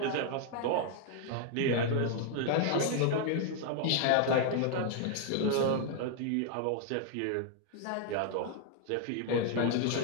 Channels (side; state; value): both; different; correlation 0.00